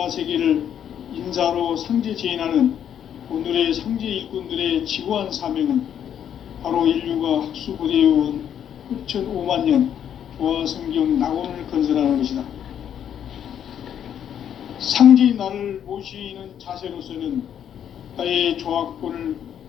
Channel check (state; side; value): quieter; right; 9.3 dB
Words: 인사로 상제 제인하는 오늘의 상제 일꾼들의 지구한 사명은 바로 인류가 학수고대해온 6,500만 년 조화성경 낙원을 건설하는 것이다. 상제인 나를 모시는 자세로서는 나의 조화권을